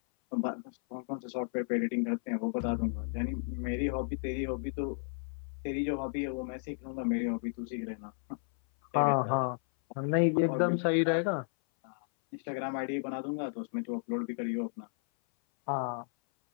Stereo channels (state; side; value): silent; right; 56 dB below the other